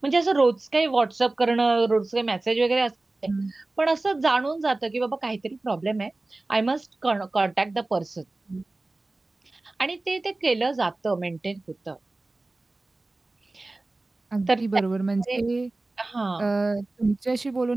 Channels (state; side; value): quieter; left; 3.0 dB